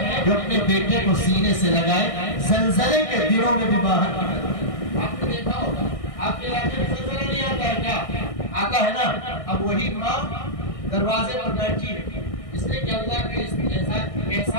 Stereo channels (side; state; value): right; late; 1.6 ms